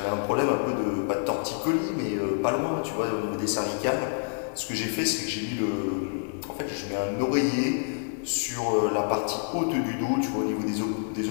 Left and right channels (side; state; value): right; silent; digital silence